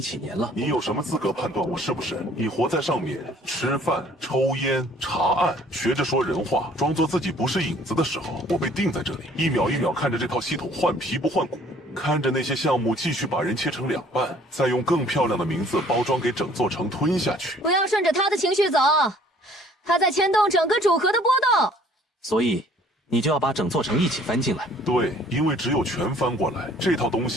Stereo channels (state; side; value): normal; both; correlation 0.56